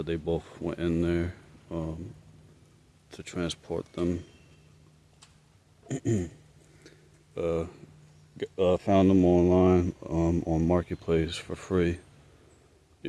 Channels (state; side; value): identical; both; correlation 1.00